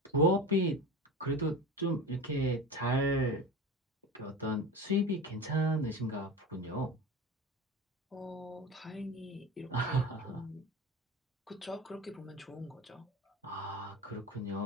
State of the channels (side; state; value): both; normal; correlation 0.30